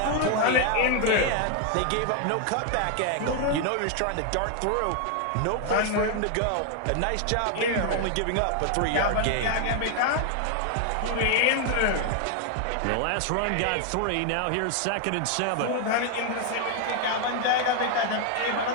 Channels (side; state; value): both; different; correlation 0.00